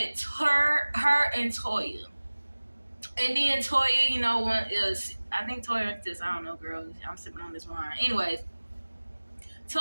her and Toya. And then Toya, you know, I think Toya this, I don't know, girl. I'm sipping on this wine. Anyways,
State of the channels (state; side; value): inverted; both; correlation -1.00